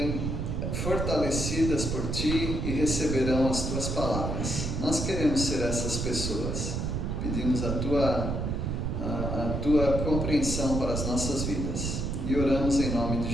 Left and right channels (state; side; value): noise; right; rumble, 1 dB below the sound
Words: fortalecidas por Ti e receberão as Tuas palavras. Nós queremos ser essas pessoas. Pedimos a Tua compreensão para as nossas vidas e oramos em nome de